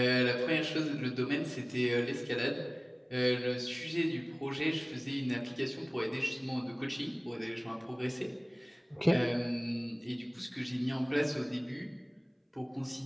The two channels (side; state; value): both; identical; correlation 1.00